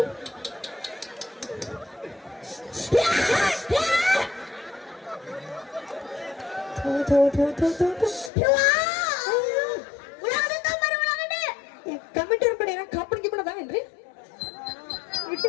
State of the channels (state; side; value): drops out; right; at 8.3 s